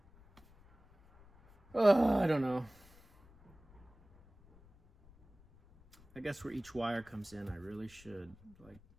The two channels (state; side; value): noise; left; rumble, 26 dB below the sound